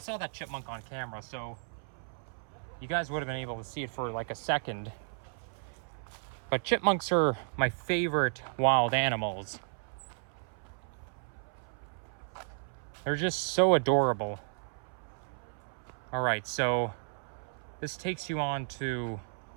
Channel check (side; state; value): left; silent; 55 dB below the other